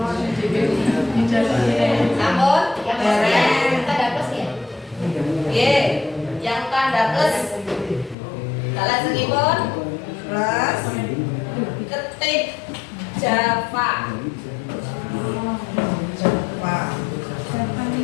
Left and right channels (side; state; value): right; drops out; at 8.2 s